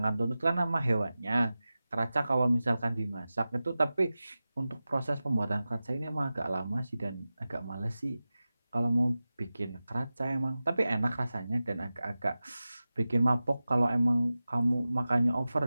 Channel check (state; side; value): inverted; both; correlation -0.95